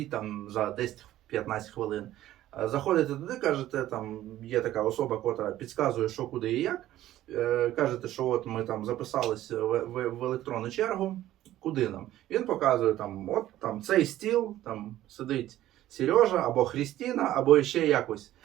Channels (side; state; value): left; quieter; 13.9 dB